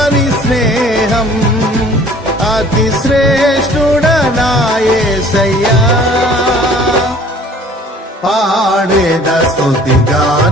స్నేహం. అతి శ్రేష్ఠుడనా యేసయ్యా. పాడేద స్తుతి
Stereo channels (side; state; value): both; normal; correlation 0.51